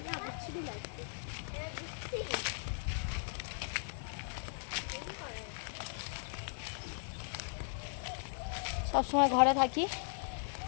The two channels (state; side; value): silent; right; digital silence